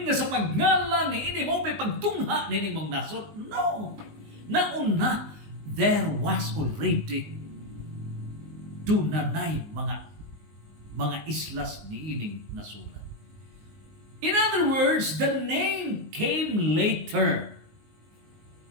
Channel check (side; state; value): left; late; 19 ms